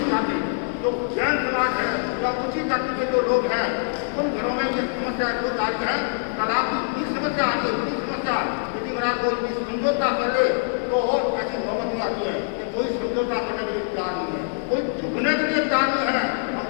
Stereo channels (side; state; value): right; silent; digital silence